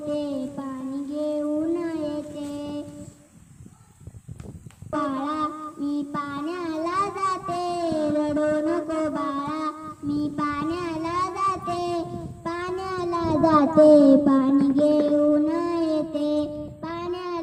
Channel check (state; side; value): identical; both; correlation 1.00